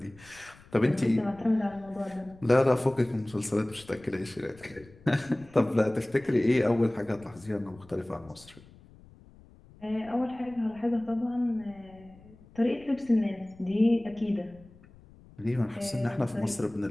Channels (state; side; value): noise; left; rumble, 24 dB below the sound